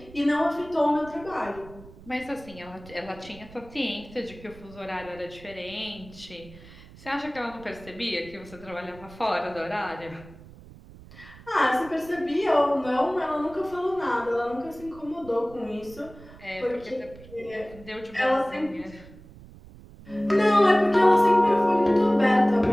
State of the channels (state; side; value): noise; right; rumble, 20 dB below the sound